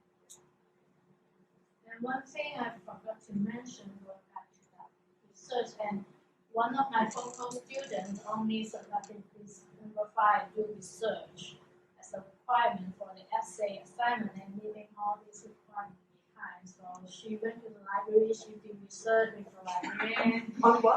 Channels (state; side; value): identical; both; correlation 1.00